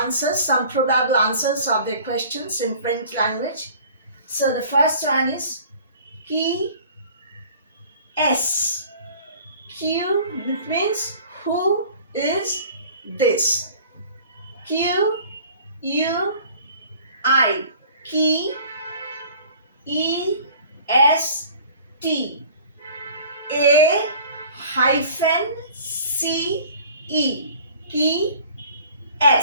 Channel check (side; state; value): both; inverted; correlation -0.48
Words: answers, some probable answers of the questions in French language. So the first one is qui est? Q means who is this? Q U I qui EST A hyphen CE key